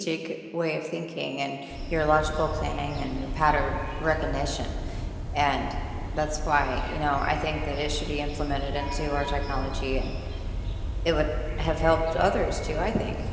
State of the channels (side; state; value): both; identical; correlation 1.00